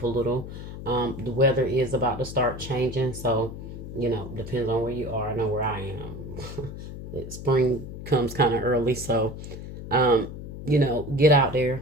a little. The weather is about to start changing, so depends on where you are. I know where I am. Spring comes kind of early, so get out there,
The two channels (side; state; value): left; noise; hum, 10 dB below the sound